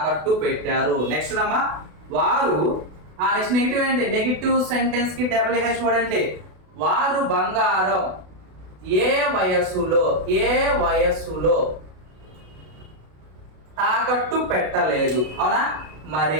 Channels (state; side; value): late; left; 32 ms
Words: పెట్టారు. నెక్స్ట్ అమ్మా, వారు నెక్స్ట్ నెగిటివ్ ఏంటి, నెగిటివ్ సెంటెన్స్ కి WH వర్డ్ అంటే వారు బంగారం ఏ వయసులో తాకట్టు పెట్టలేదు. అవునా,